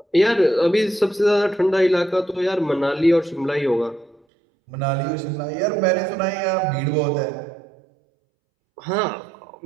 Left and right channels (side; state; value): left; drops out; at 4.2 s